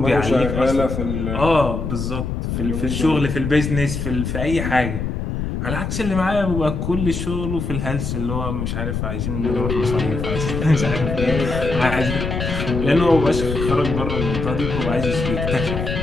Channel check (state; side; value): noise; left; rumble, 3 dB below the sound